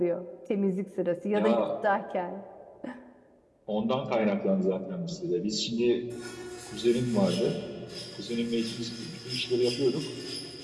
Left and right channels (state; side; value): identical; both; correlation 1.00